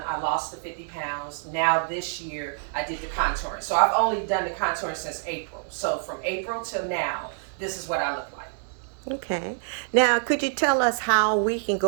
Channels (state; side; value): silent; left; digital silence